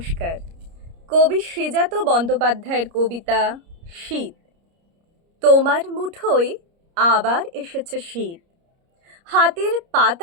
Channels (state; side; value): late; left; 30 ms